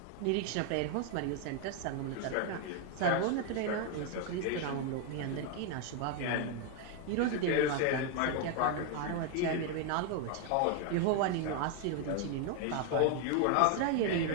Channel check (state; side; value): different; both; correlation 0.01